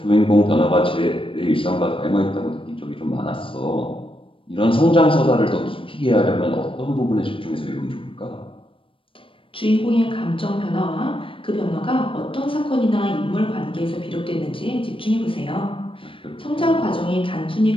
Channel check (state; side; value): late; right; 0.25 ms